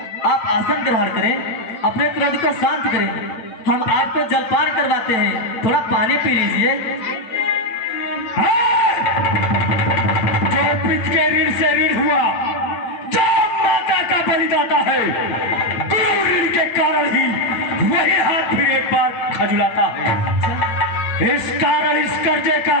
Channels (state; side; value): late; right; 8.9 ms